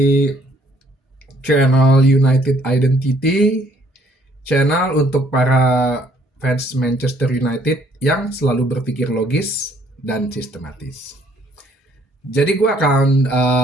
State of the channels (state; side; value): normal; both; correlation 0.63